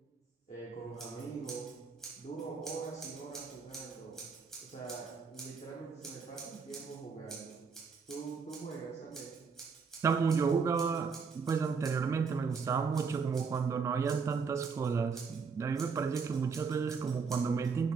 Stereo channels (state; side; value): quieter; left; 5.4 dB